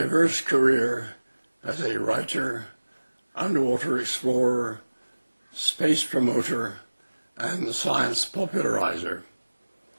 career as a writer, underwater explorer, space promoter, and science popularizer.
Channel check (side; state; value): both; inverted; correlation -1.00